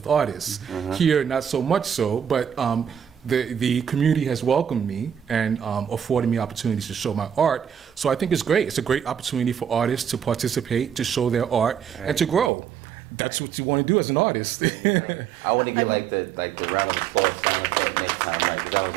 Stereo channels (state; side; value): drops out; left; at 12.5 s